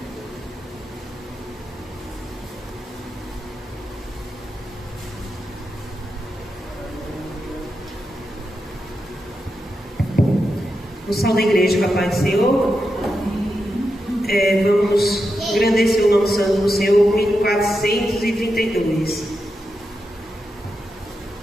O salve da igreja, com a paz do Senhor. Vamos engrandecer o nome santo do Senhor, hino 432.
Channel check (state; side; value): normal; both; correlation 0.87